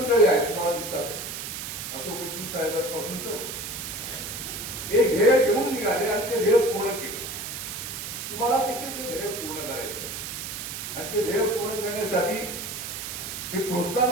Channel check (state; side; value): noise; right; hiss, 6 dB below the sound